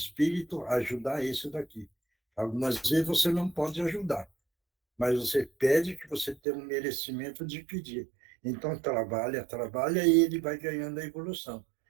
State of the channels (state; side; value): drops out; left; at 6.4 s